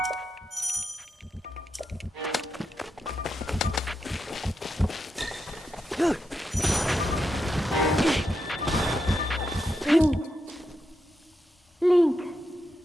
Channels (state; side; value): normal; both; correlation 0.85